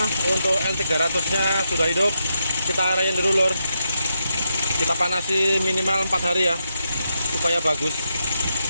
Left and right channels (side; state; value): both; inverted; correlation -0.83